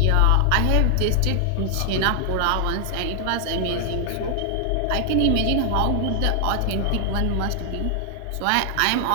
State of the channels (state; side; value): different; both; correlation 0.00